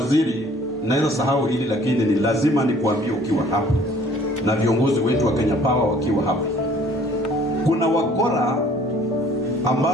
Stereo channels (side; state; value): both; normal; correlation 0.55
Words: naweza sahau hili lakini ni lazima nikuambie ukiwa hapa na viongozi wetu wa Kenya Power wakiwa hapa, kuna wakora